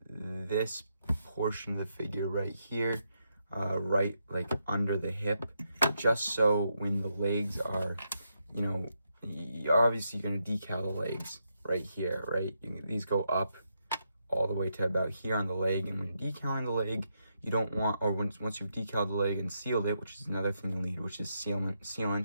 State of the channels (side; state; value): both; inverted; correlation -0.81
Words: this portion of the figure right here, right like under the hip, just so when the legs are, obviously you're going to decal the legs right here, right? These go up all the way to about here on the leg, and when decaling the leg, you don't want, or once you've decaled the leg and sealed it, which is another thing you need, which is